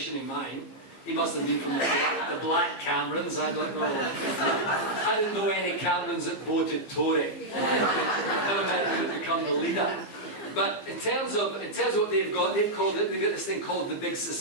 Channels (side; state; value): right; late; 15 ms